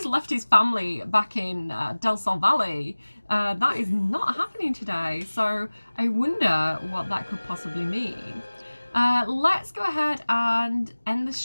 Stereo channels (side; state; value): both; inverted; correlation -1.00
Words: left his family back in Del Sol Valley. That is not happening today. So I wonder what that could possibly mean. Let's go ahead and end the